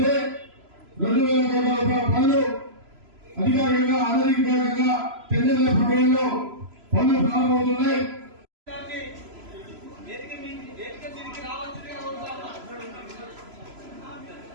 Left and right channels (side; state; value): left; late; 3.0 ms